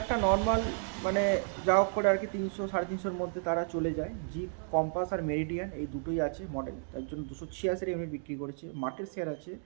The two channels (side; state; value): left; silent; digital silence